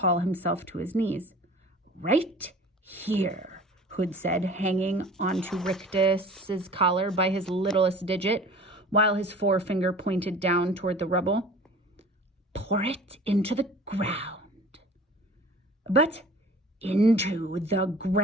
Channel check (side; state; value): both; normal; correlation 0.44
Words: himself to his knees. Right here, Hood said, hanging onto Rictus's collar by his littlest digit, while his forefinger pointed down toward the rubble. Pour it into the ground. But into the